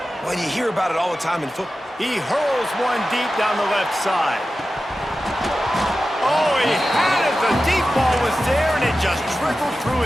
Well, you hear about it all the time in football. He hurls one deep down the left side. Oh, he had it. The deep ball was there, and it just trickled through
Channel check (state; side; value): normal; both; correlation 0.93